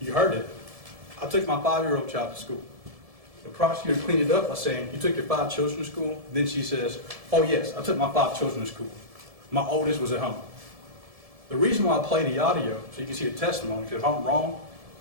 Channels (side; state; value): left; late; 1.7 ms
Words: You heard it. I took my 5-year-old child to school. The prosecutor cleaned it up by saying, you took your 5 children to school? Then she says, oh yes, I took my 5 children to school. My oldest was at home. The reason why I play the audio, so you can see the testimony, because if I'm wrong,